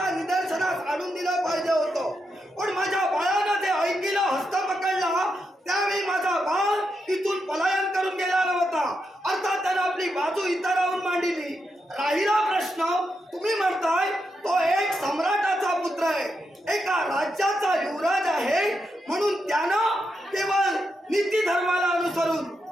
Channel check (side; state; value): both; normal; correlation 0.84